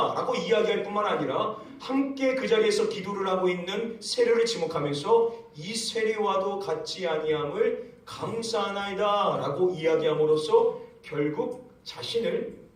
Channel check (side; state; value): both; identical; correlation 1.00